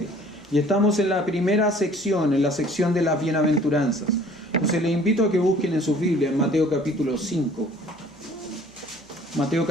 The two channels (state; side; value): noise; right; hum, 29 dB below the sound